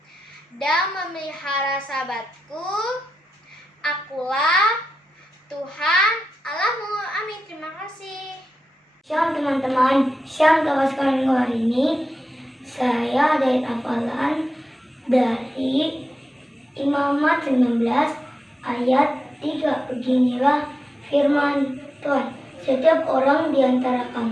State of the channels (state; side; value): normal; both; correlation 0.90